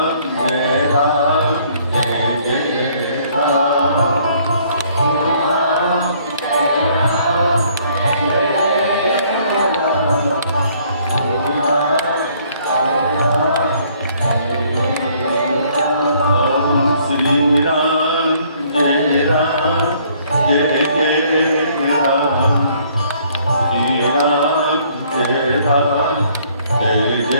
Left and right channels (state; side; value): inverted; both; correlation -0.62